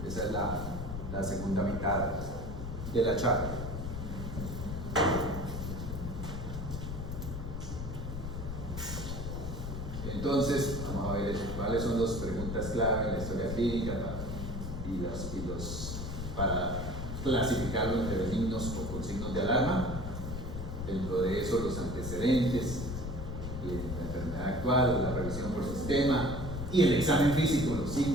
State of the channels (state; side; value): noise; left; rumble, 6 dB below the sound